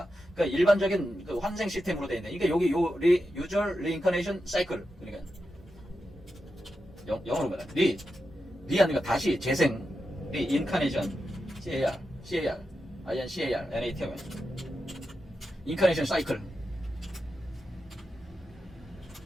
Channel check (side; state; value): both; normal; correlation 0.89